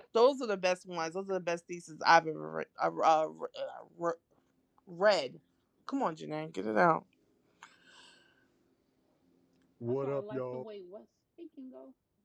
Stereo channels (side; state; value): both; identical; correlation 1.00